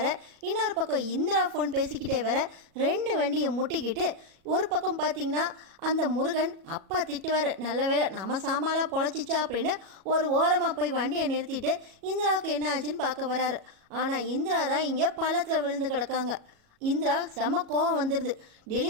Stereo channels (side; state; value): left; late; 37 ms